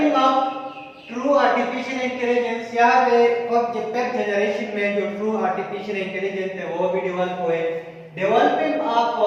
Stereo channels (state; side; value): identical; both; correlation 1.00